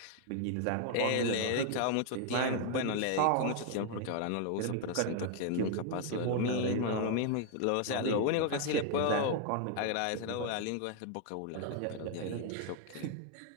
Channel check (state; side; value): different; both; correlation 0.00